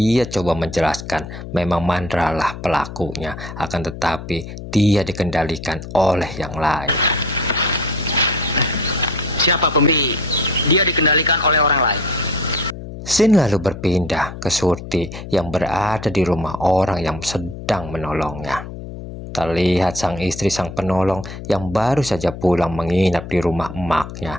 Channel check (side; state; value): left; noise; hum, 11 dB below the sound